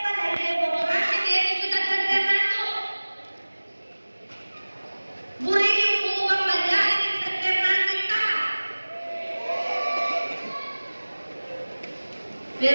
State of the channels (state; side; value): inverted; both; correlation -1.00